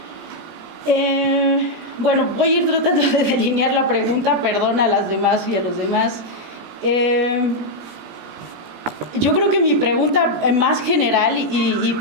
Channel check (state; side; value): late; left; 16 ms